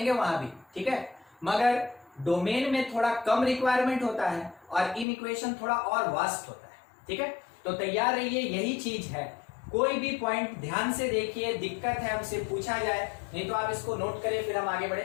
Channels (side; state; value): right; drops out; at 5.1 s